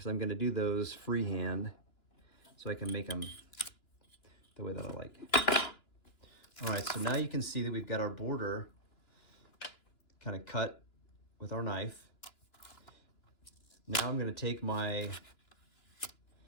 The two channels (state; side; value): late; right; 2.9 ms